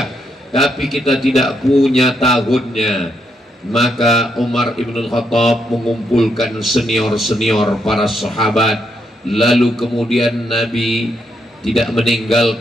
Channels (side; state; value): both; normal; correlation 0.78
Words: Tapi kita tidak punya tahunnya. Maka Umar ibn al-Khattab mengumpulkan senior-senior para sahabat. Lalu kemudian Nabi tidak